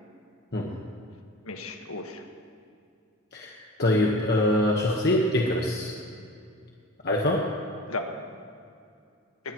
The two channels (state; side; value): normal; both; correlation 0.37